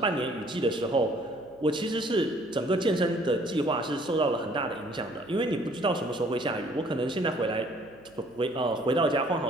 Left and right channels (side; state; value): right; noise; hum, 29 dB below the sound